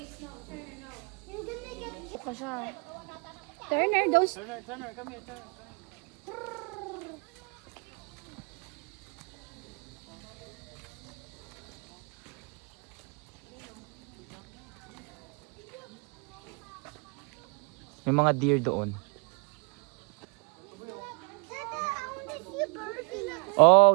You're gonna get. Pa siya. Turner, those... Turner, come here, Turner. May mga deer doon. Dad, I want to see a bird in that.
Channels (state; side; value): quieter; left; 36.1 dB